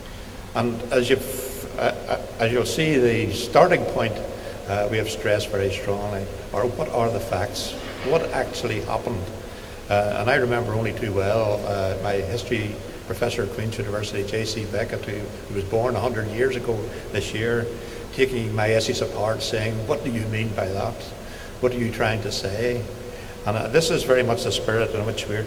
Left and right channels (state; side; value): identical; both; correlation 1.00